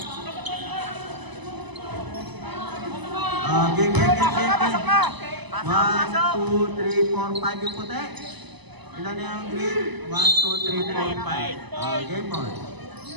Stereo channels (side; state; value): left; late; 1.0 ms